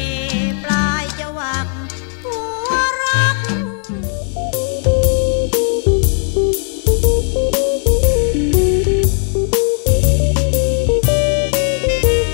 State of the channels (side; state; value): right; silent; 60 dB below the other